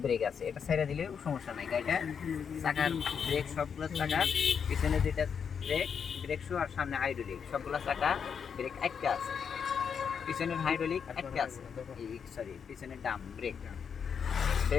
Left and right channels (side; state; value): right; quieter; 6.9 dB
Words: ব্রেক আছে, এটা ছেড়ে দিলেও সমস্যা নাই, গাড়িটা চাকার ব্রেক সবগুলো চাকার পিছনে যেটা ব্রেক শু আর সামনে হাইড্রোলিক সবগুলো চাকা ব্রেক একটা আছে, পিছনের হাইড্রোলিক একটা আছে, সরি পিছনের ডাম